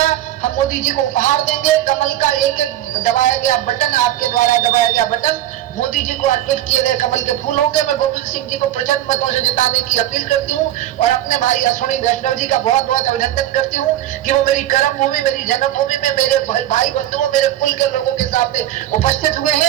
हम मोदी जी को उपहार देंगे, कमल का एक दबाया गया बटन, आपके द्वारा दबाया गया बटन मोदी जी को अर्पित किए गए कमल के फूल होंगे। मैं गोविंद सिंह जी को प्रचंड मतों से जिताने की अपील करती हूँ और अपने भाई अश्विनी वैष्णव जी का बहुत बहुत अभिनंदन करती हूँ कि वो मेरी कर्म भूमि, मेरी जन्मभूमि में मेरे भाई बंधुओं, मेरे कुल के लोगों के सामने उपस्थित हुए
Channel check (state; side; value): quieter; left; 13.2 dB